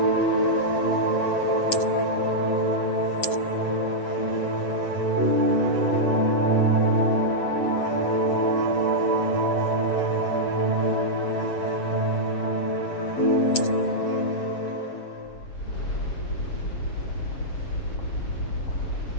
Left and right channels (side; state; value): right; late; 7.2 ms